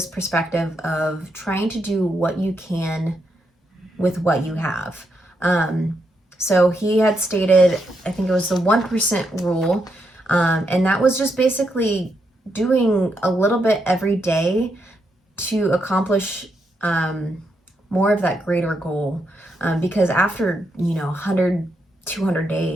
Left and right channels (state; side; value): normal; both; correlation 0.81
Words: perspective of trying to do what you can with what you have. So he had stated, I think it was the 1% rule, and that was just basically doing a little bit every day to accomplish more of that greater goal. Because after, 100, 200